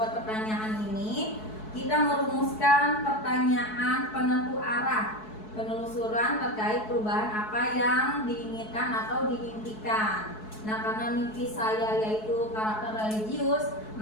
pertanyaan ini kita merumuskan pertanyaan penentu arah penelusuran terkait perubahan apa yang diinginkan atau diimpikan. Nah, karena mimpi saya yaitu karakter religius,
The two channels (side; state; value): right; late; 4.7 ms